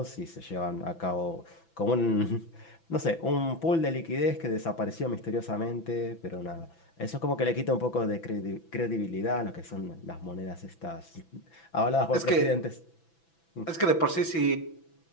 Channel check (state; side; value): late; right; 6.0 ms